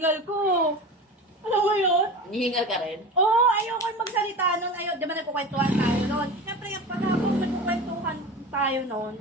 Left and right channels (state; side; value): normal; both; correlation 0.31